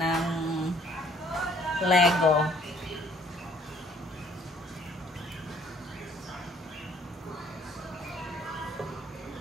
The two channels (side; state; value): both; normal; correlation 0.61